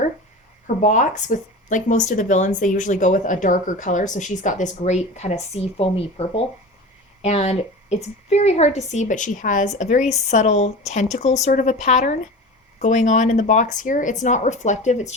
Her box, with like most of the villains, they usually go with a darker color. So she's got this great kind of sea foamy purple. And it's very hard to see, but she has a very subtle tentacle sort of a pattern going on in the box here. It's not reflective, it's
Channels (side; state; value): both; normal; correlation 0.32